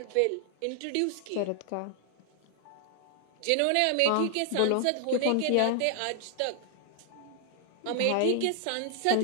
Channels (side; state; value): both; different; correlation 0.00